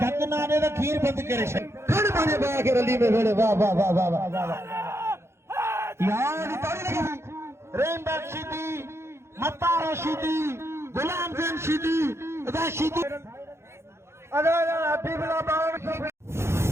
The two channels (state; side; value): late; left; 0.13 ms